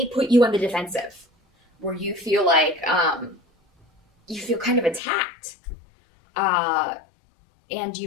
put you on the defensive, where you feel like, you feel kind of attacked. And you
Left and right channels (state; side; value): drops out; right; at 5.0 s